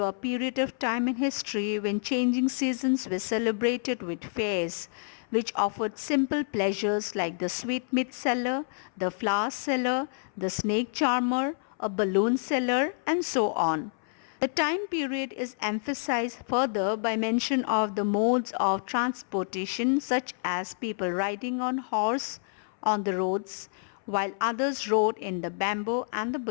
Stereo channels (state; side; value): silent; right; 59 dB below the other